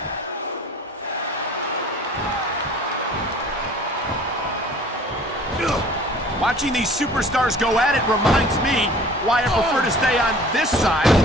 Watching these superstars go at it reminds me why I prefer to stay on this side of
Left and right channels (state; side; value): normal; both; correlation 0.48